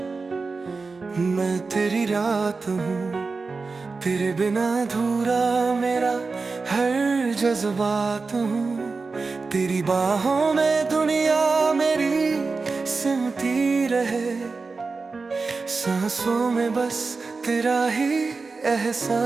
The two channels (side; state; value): left; quieter; 4.2 dB